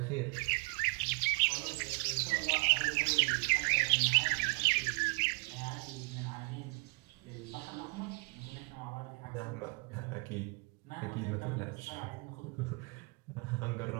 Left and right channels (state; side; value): quieter; left; 31.6 dB